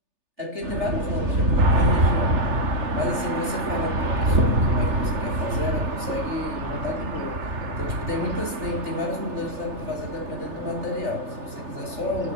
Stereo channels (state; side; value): late; left; 3.4 ms